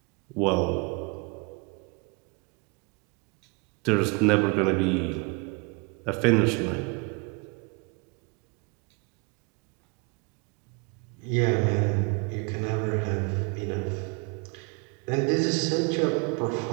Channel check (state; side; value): quieter; left; 31.1 dB